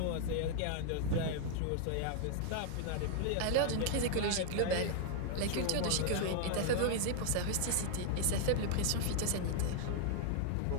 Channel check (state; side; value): different; both; correlation 0.00